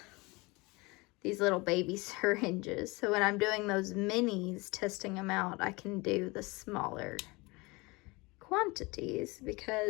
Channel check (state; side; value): quieter; right; 24.7 dB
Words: these little baby syringes. So when I'm doing those minis, testing them out, I can do the smaller quantities,